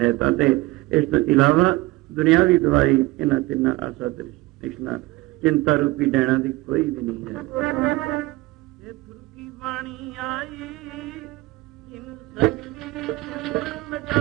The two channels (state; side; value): quieter; left; 20.6 dB